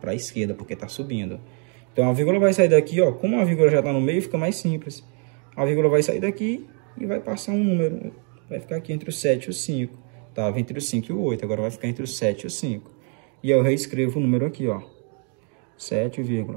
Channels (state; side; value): quieter; left; 38.7 dB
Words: a esquerda, porque tá subindo. Então, a vírgula vai sair daqui, ó. Como a vírgula já tá no meio, fica mais simples. A vírgula vai sair daqui e vai passar um número. Vai ficar aqui entre o 7 e o 5. Tava entre o 5 e o 8, agora vai ficar entre o 7 e o 5. E eu reescrevo o número aqui, ó.